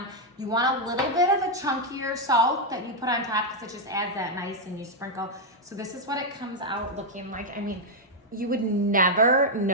You want a little bit of a chunkier salt that you put on top because it just adds that nice, and you sprinkle. So this is what it comes out looking like. I mean, you would never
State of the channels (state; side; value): normal; both; correlation -0.01